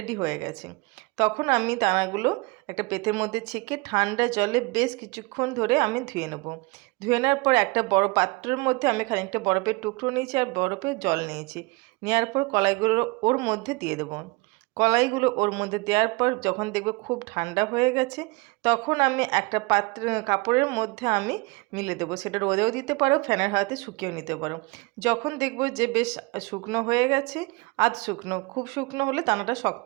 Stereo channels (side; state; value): left; quieter; 25.8 dB